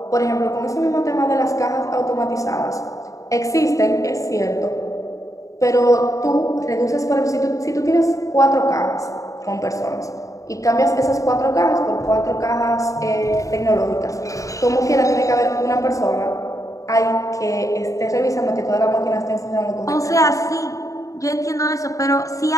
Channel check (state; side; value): late; right; 0.16 ms